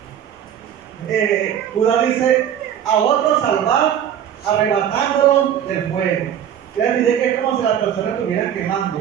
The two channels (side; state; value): left; quieter; 9.7 dB